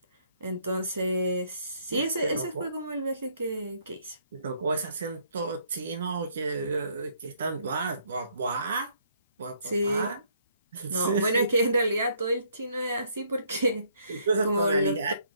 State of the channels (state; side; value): inverted; both; correlation -0.67